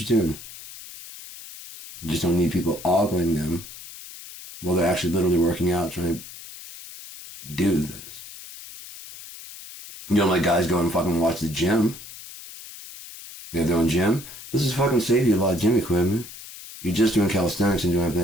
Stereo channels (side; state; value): left; noise; hiss, 15 dB below the sound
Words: tune. You just don't need people ogling them while they're actually literally working out, trying to do this. You don't let guys go and fucking watch the gym. They have their own gym. This is fucking save you a lot of gym equipment. You're just doing calisthenics and doing